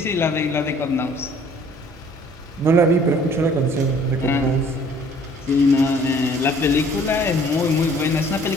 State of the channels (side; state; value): both; normal; correlation 0.55